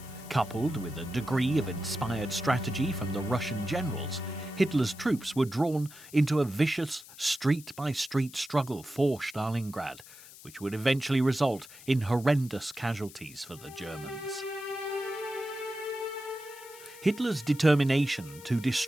coupled with a degree of inspired strategy from the Russian generals, Hitler's troops were drawn into a vicious street-by-street struggle for Stalingrad, which would eventually result in horrendous casualties for the Germans. Hitler's determination to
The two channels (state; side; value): noise; left; hiss, 19 dB below the sound